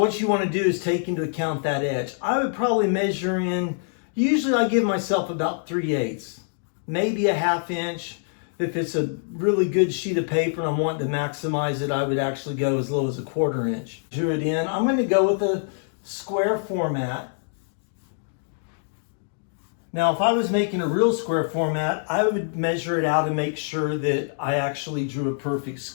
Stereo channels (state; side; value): silent; right; digital silence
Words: you want to do is take into account that edge. I would probably measure in, usually I give myself about 3/8, maybe a 1/2 inch. If it's a really good sheet of paper and I'm wanting to maximize it, I would actually go as low as a 1/4 inch. Drew it in. I'm going to go with a square format. Now, if I was making a real square format, I would measure it out and make sure that I actually drew a perfect